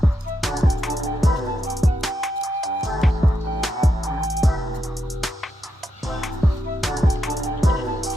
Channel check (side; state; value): both; normal; correlation 0.83